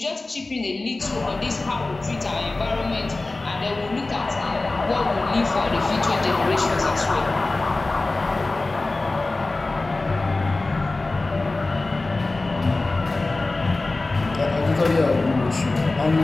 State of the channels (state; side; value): quieter; right; 3.2 dB